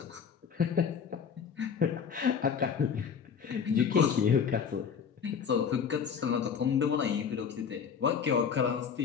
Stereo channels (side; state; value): right; quieter; 6.9 dB